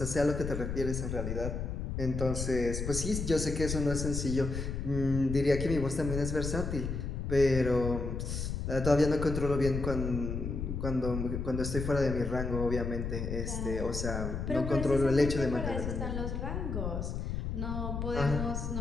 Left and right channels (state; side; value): noise; left; rumble, 3 dB below the sound